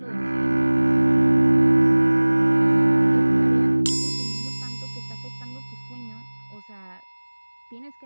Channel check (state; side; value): inverted; both; correlation -1.00